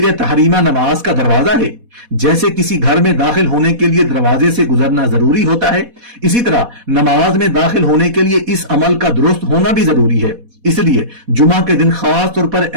تحریمہ نماز کا دروازہ ہے۔ جیسے کسی گھر میں داخل ہونے کے لیے دروازے سے گزرنا ضروری ہوتا ہے، اسی طرح نماز میں داخل ہونے کے لیے اس عمل کا درست ہونا بھی ضروری ہے۔ اس لیے جمعہ کے دن خاص طور پر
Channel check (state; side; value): late; left; 4.1 ms